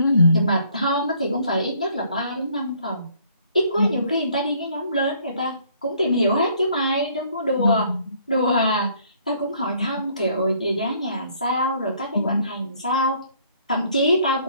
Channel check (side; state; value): both; inverted; correlation -0.63